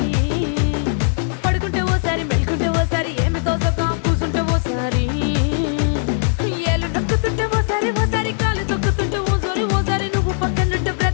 పడుకుంటే ఓసారి మెలుకుంటే ఓసారి ఏమి తోసక కూసుంటే ఓసారి ఏళ్ళు నొక్కుతుంటే ఓసారి ఓసారి కాలు తొక్కుతుంటే ఓసారి ఓసారి నువ్వు పక్కనుంటే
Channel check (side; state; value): right; silent; 62 dB below the other